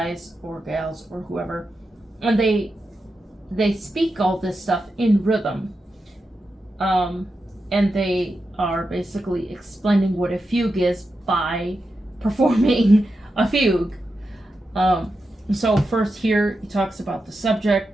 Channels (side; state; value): both; normal; correlation 0.89